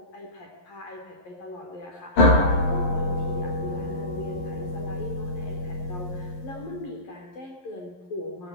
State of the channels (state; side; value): late; right; 11 ms